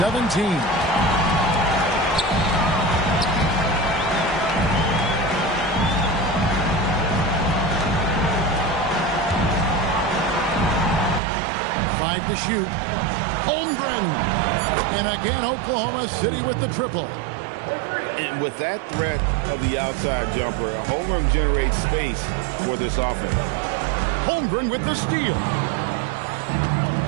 Five to shoot. Holmgren. And again, Oklahoma City with the triple. And with that threat of the outside jumper, Holmgren generates space for this offense. Holmgren with the steal.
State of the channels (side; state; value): left; drops out; at 11.2 s